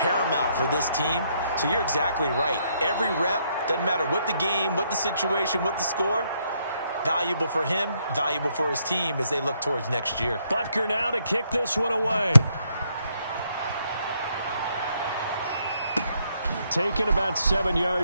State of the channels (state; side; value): inverted; both; correlation -0.73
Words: for this team. So you're exactly right. Every rep, doesn't matter what the game, what the situation, what the score, valuable for him, valuable for his team as they look towards next year. Butker now to kick this one away. Taken about 7